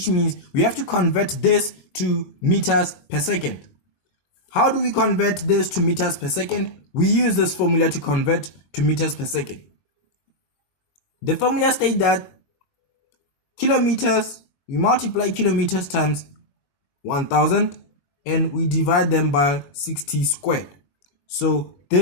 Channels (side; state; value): right; late; 21 ms